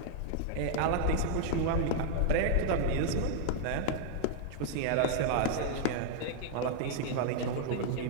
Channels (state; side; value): different; both; correlation -0.01